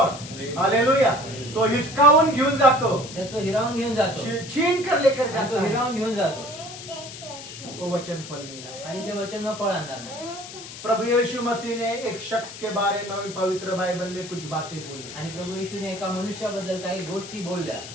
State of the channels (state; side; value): noise; left; hiss, 13 dB below the sound